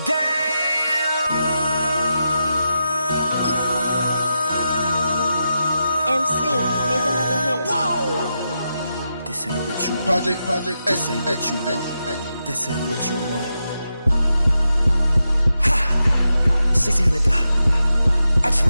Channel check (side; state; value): both; inverted; correlation -0.88